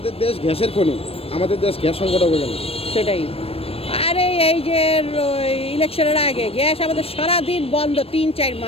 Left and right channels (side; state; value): right; late; 0.28 ms